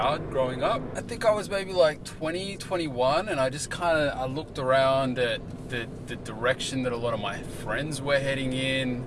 growing up. I think I was maybe like 20, 21, and I just I looked around at the direction that a lot of my friends were heading in,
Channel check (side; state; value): both; identical; correlation 1.00